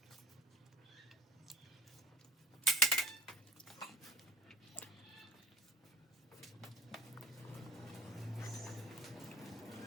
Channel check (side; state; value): both; normal; correlation 0.42